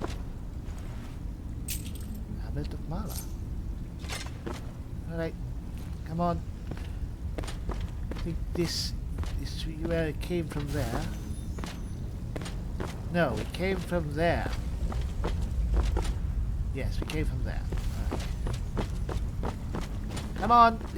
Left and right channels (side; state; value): both; identical; correlation 1.00